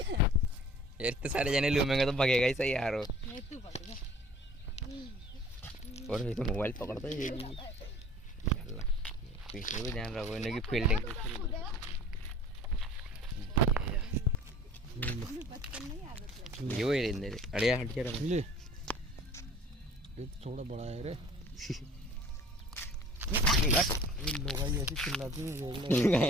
यार इतने सारे जने लूमेंगे तो भगेगा ही सही यार वो और ये तो मोबाइल पकड़ता है ये भी पीछे भी ध्यान रखो इन्हें की फील्डिंग ये वही रहने दे अड़िया हट के रहो ये थोड़ा बड़ा है रे लोग ऐसी चिल्लाती हैं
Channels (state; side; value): normal; both; correlation 0.48